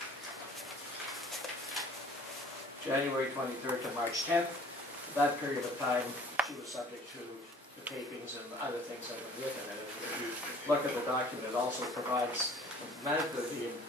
January 23rd to March 10th. That period of time, she was subject to the tapings and other things that went with it. And if you look at the document, it also provides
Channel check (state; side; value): normal; both; correlation 0.52